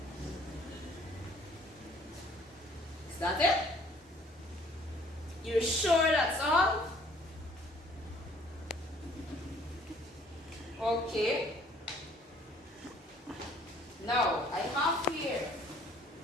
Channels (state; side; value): normal; both; correlation 0.58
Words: Is that it? You're sure that's all? Okay. Now, I have here